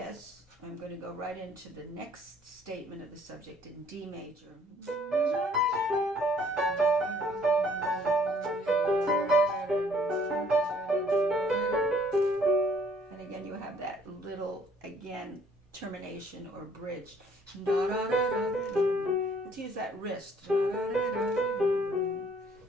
I'm going to go right into the next statement of the subject in D major. And again, you have that little, again, termination or bridge. Let's use that wrist. So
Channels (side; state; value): both; normal; correlation 0.60